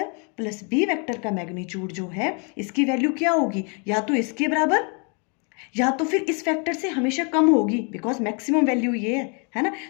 प्लस बी वेक्टर का मैग्नीट्यूड जो है इसकी वैल्यू क्या होगी, या तो इसके बराबर या तो फिर इस फैक्टर से हमेशा कम होगी, बिकॉज मैक्सिमम वैल्यू ये है ना,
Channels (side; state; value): right; quieter; 36.2 dB